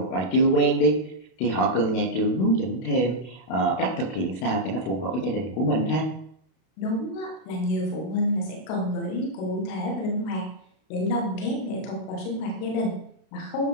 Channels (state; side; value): late; right; 32 ms